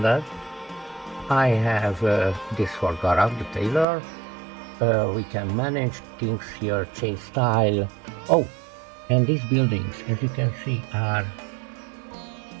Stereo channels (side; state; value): left; drops out; at 3.9 s